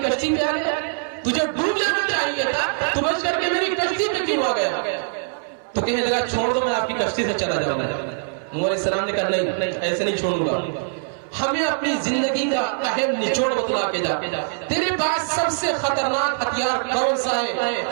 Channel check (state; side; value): silent; left; 64 dB below the other